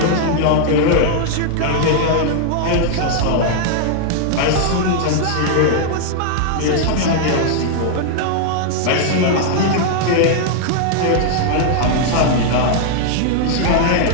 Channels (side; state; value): both; different; correlation -0.01